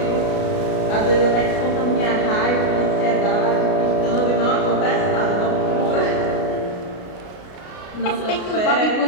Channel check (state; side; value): late; right; 33 ms